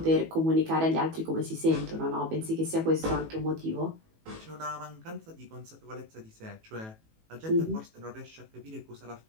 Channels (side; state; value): left; late; 18 ms